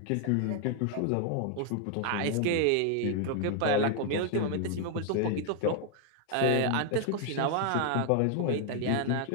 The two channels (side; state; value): both; different; correlation 0.00